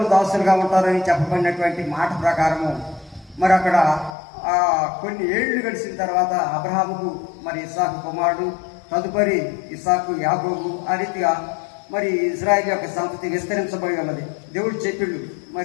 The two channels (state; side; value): drops out; right; at 4.2 s